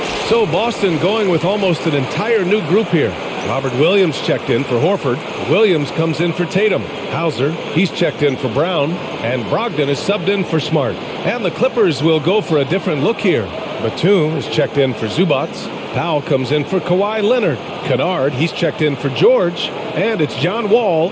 So Boston going with almost an entire new group here. Robert Williams checked in for Horford. Williams comes in for Tatum. Hauser, he's checked in for Brown. And Brogdon is subbed in for Smart. And the Clippers will go for a different look here. Batum is checked in for Zubac. Powell comes in for Kawhi Leonard. Kennard, he's checked in for George. And it's John Wall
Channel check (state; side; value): identical; both; correlation 1.00